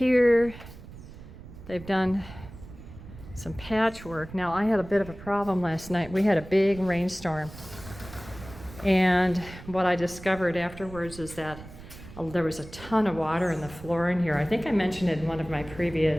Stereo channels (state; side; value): noise; right; rumble, 16 dB below the sound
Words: they've done some patchwork. Now, I had a bit of a problem last night. We had a big rainstorm. And what I discovered afterwards is that there was a ton of water in the floor in here. I think I mentioned it in one of my